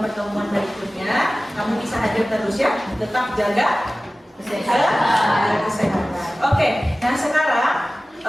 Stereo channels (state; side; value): normal; both; correlation 0.97